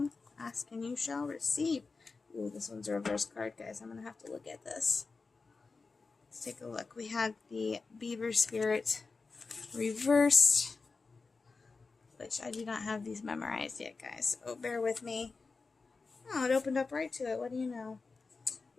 Ask and you shall receive. Ooh, this one's a reverse card, guys. I'm gonna have to look at this. Let's take a look. We had the beaver spirit reversed, which I do not have these memorized yet, guys. So bear with me. Oh, it opened up right to it. What do you know?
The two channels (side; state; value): right; quieter; 4.2 dB